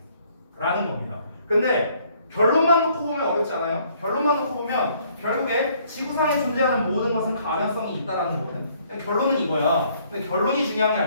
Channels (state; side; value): inverted; both; correlation -0.64